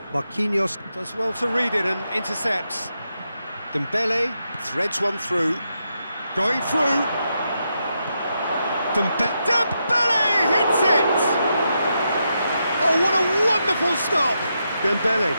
Marquinhos does well to read it and intercepts. Dembele threads one through. Going through. Dembele hits it! Oh, what a wonderful stop! Dembele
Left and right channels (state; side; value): inverted; both; correlation -0.84